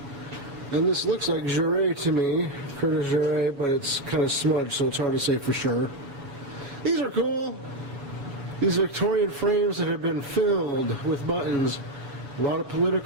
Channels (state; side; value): late; left; 7.2 ms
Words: And this looks like Jure to me, Curtis Jure, but it's kind of smudged, so it's hard to say for sure. These are cool. These Victorian frames that have been filled with buttons. A lot of